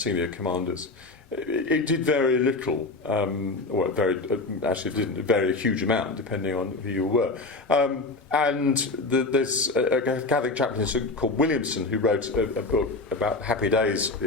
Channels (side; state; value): right; quieter; 3.3 dB